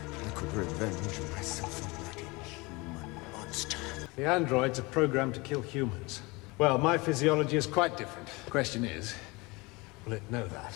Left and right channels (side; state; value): right; quieter; 25.0 dB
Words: I could revenge myself on that inhuman monster. The androids are programmed to kill humans. Well, my physiology is quite different. The question is, will it know that?